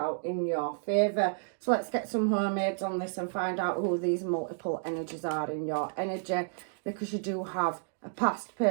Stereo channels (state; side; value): silent; left; digital silence